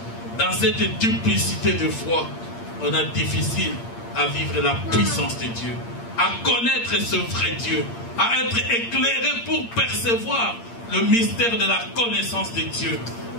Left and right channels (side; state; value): right; late; 8.7 ms